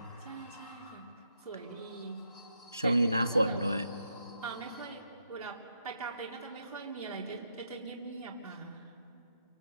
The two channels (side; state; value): both; inverted; correlation -0.81